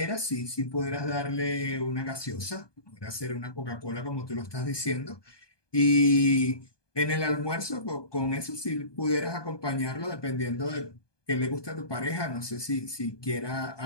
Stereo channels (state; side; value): late; right; 1.2 ms